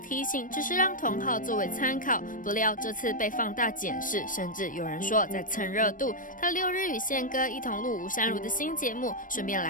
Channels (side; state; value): right; late; 0.39 ms